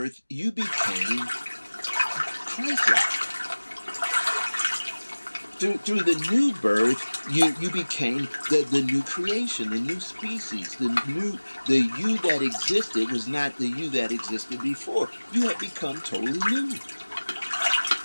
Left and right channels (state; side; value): inverted; both; correlation -1.00